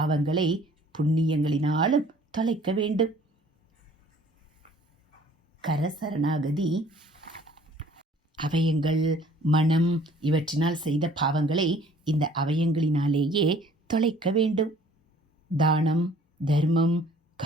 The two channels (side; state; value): both; normal; correlation 0.54